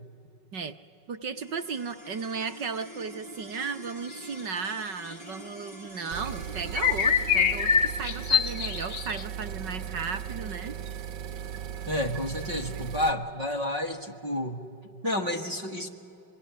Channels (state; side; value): late; left; 5.3 ms